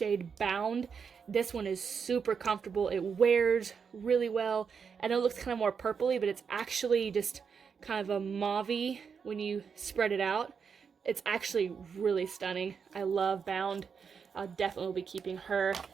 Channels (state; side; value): quieter; left; 6.3 dB